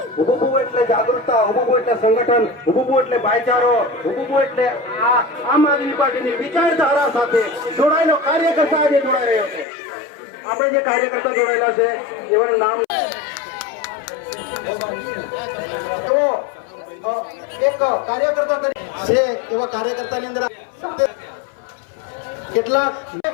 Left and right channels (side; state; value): right; drops out; at 9.7 s